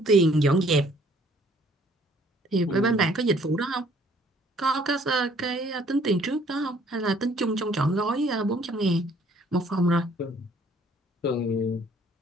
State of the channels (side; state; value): both; normal; correlation 0.60